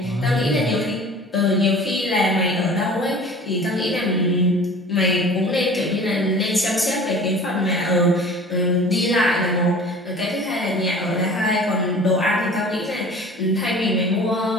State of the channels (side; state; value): both; normal; correlation 0.44